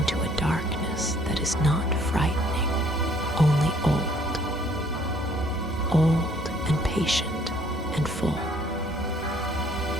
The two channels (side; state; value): both; normal; correlation 0.61